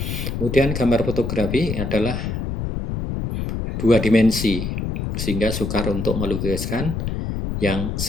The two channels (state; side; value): noise; left; rumble, 3 dB below the sound